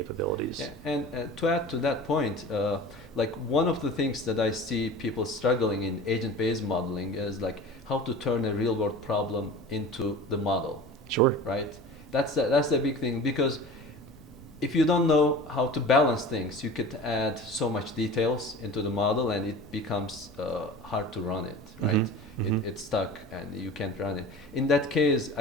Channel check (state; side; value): normal; both; correlation 0.38